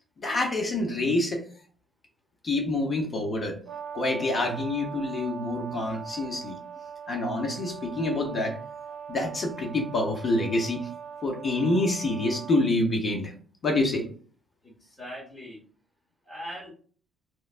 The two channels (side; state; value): both; normal; correlation 0.65